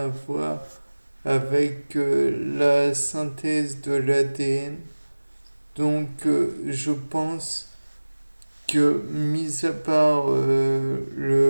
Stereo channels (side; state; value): both; inverted; correlation -1.00